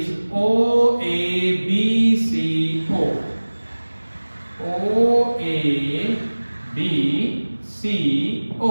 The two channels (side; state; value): both; inverted; correlation -1.00